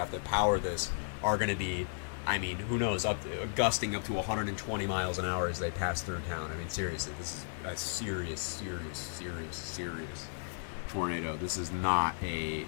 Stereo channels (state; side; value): silent; right; digital silence